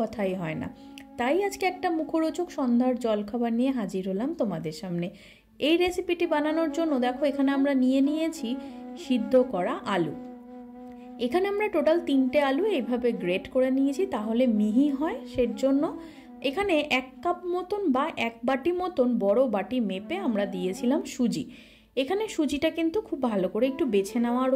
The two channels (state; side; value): identical; both; correlation 1.00